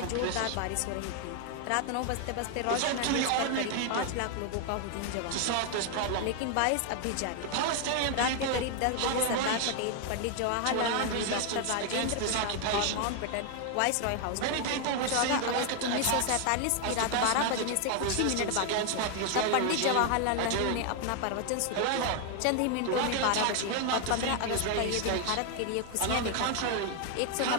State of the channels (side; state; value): both; different; correlation 0.01